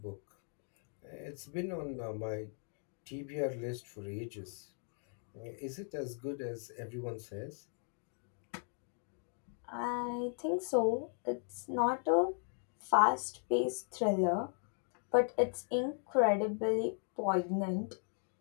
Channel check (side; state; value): right; silent; 53 dB below the other